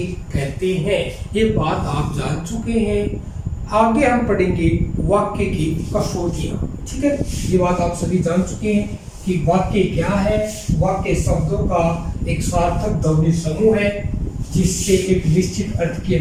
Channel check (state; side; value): identical; both; correlation 1.00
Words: कहते हैं। ये बात आप जान चुके हैं। आगे हम पढ़ेंगे वाक्य की कसौटियां। ठीक है, ये बात आप सभी जान चुके हैं कि वाक्य क्या है। वाक्य शब्दों का एक सार्थक ध्वनि समूह है जिससे एक निश्चित अर्थ की